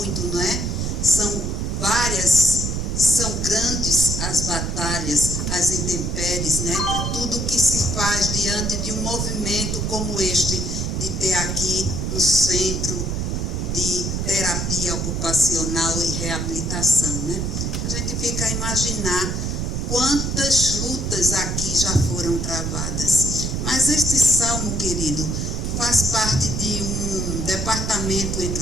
não é? São grandes as batalhas, as intempéries, né? Tudo que se faz diante de um movimento como este, de ter aqui um centro de terapia ocupacional e reabilitação, né? A gente fica a imaginar quantas lutas aqui já foram travadas. Mas este salmo, querido, faz parte de um departamento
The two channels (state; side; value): noise; right; rumble, 1 dB below the sound